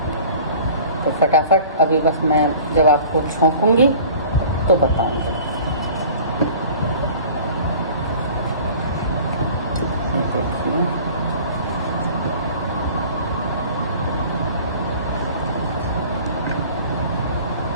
तो फटाफट अभी बस मैं जब आपको छौंकूंगी तो बताऊंगी। ये देखिए,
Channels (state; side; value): inverted; both; correlation -0.46